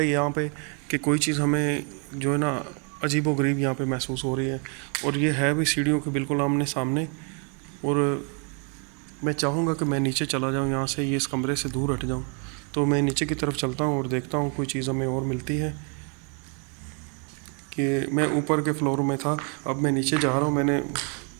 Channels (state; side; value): quieter; left; 38.3 dB